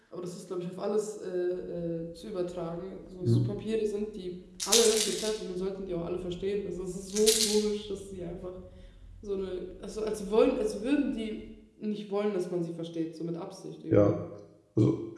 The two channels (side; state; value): both; identical; correlation 1.00